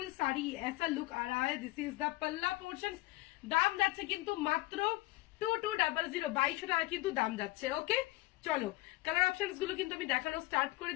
শাড়ি এসা লুক আ রা হ্যায়। দিস ইজ দ্য পাল্লা পোর্শন। দাম যাচ্ছে কিন্তু মাত্র 2200, 2200 টাকা কিন্তু দাম যাচ্ছে। ওকে, চলো কালার অপশনস গুলো কিন্তু আমি দেখানো স্টার্ট করে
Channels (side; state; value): right; quieter; 20.2 dB